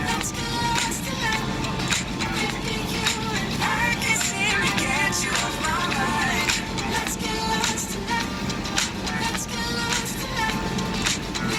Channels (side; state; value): both; identical; correlation 1.00